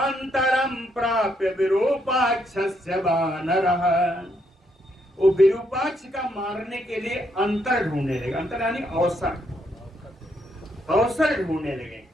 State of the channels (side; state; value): both; normal; correlation 0.75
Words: प्राप्य विरूपाक्षस्य वानरः। वो विरूपाक्ष का मारने के लिए अंतर ढूंढने लगे। अंतर यानी अवसर ढूंढने लगे।